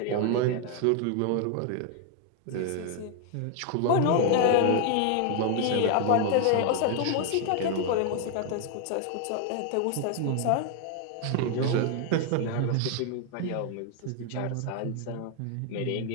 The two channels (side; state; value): both; different; correlation 0.01